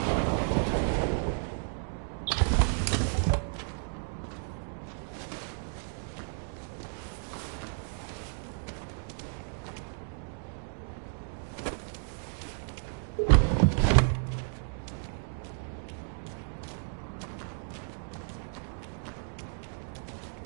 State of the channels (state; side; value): silent; left; 56 dB below the other